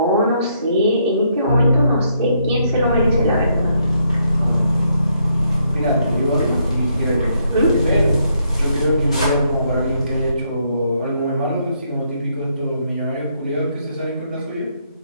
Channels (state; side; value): inverted; both; correlation -0.74